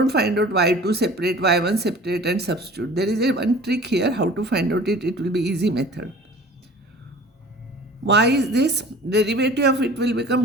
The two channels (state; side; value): normal; both; correlation 0.44